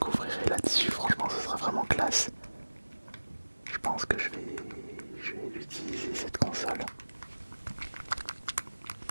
là-dessus, franchement ce sera vraiment classe. Je pense que je vais l'utiliser cette console.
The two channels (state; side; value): inverted; both; correlation -1.00